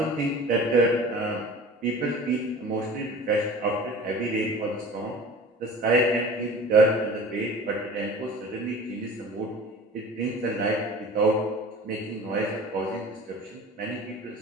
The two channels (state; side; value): normal; both; correlation 0.41